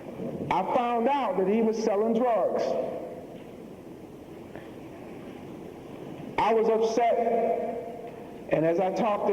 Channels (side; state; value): both; identical; correlation 1.00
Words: I found out that he was selling drugs. I was upset, and as I talked